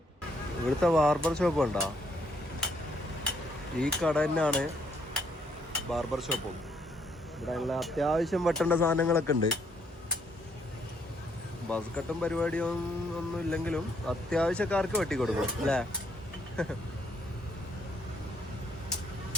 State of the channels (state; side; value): normal; both; correlation 0.69